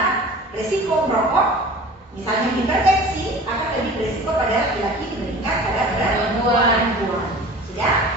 resiko merokok, misalnya hipertensi, akan lebih beresiko pada laki-laki dibandingkan pada perempuan. Sudah?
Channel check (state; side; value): normal; both; correlation 0.41